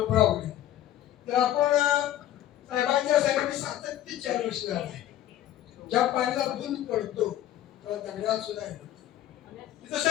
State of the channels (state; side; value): quieter; right; 12.6 dB